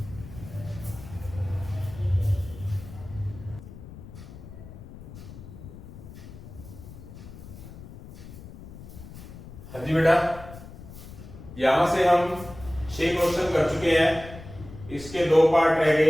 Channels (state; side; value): noise; left; rumble, 15 dB below the sound